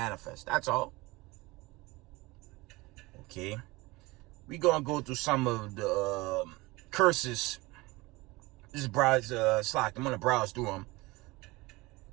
That's all. Okay. We going to go through some of the curses. This is Slack. I'm going to browse through them.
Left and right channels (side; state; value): left; quieter; 22.3 dB